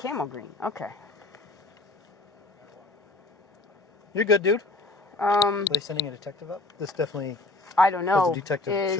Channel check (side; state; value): right; quieter; 3.2 dB